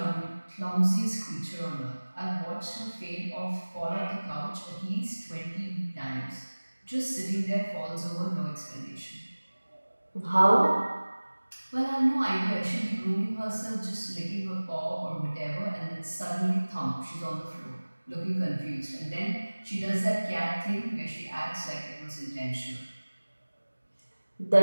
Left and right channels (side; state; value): both; inverted; correlation -1.00